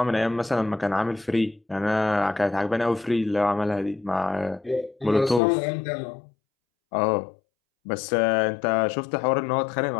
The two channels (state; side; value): drops out; right; at 5.4 s